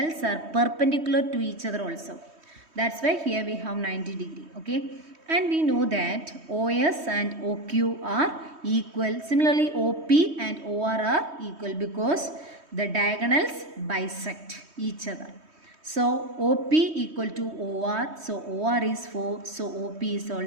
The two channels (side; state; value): left; late; 3.2 ms